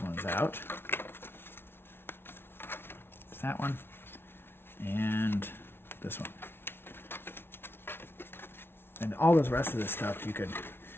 ones out. It's that one and this one. And all this rest of this stuff, you could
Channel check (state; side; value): late; right; 0.11 ms